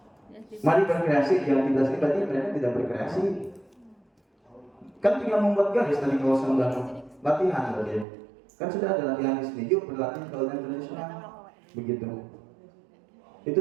mari berkreasi, di aktivitas ini berarti mereka tidak berkreasi. Kan tinggal membuat garis tadi kalau sedang latihan berarti. Kan sudah ada latihan di sini, yuk berlatih kawinan tradisional. Begitu. Itu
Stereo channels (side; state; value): left; drops out; at 8.1 s